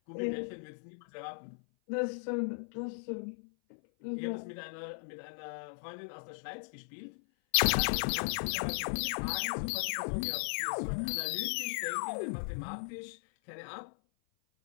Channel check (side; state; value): right; silent; 53 dB below the other